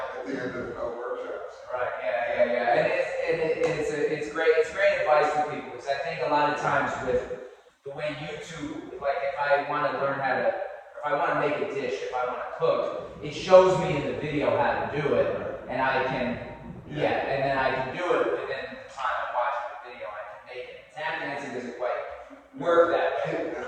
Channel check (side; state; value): both; identical; correlation 1.00